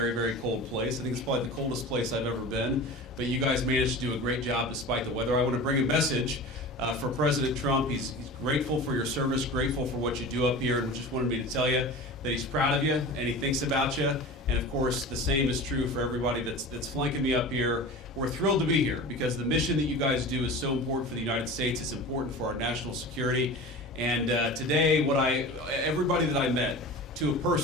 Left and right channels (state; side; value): normal; both; correlation 0.34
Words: very cold place. I think it's probably the coldest place I've ever been, but you guys managed to do a great job despite the weather. I want to bring a message for President Trump. He's grateful for your service, grateful for what you do up here, and just wanted me to tell you that he's proud of you and he thinks about you. And of course, the same is true for everybody that's flanking me up here. We're thrilled to be here because the mission that you guys do is so important for the United States. It's important for our national security. And today, everybody that I met, to a